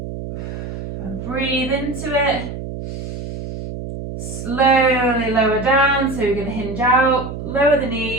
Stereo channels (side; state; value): right; noise; hum, 8 dB below the sound